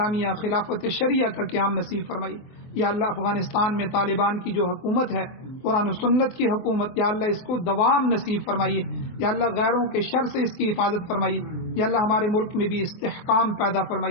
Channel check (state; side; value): late; right; 23 ms